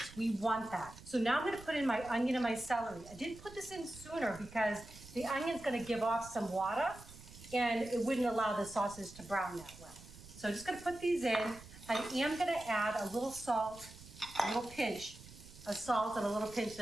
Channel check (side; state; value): right; noise; rumble, 18 dB below the sound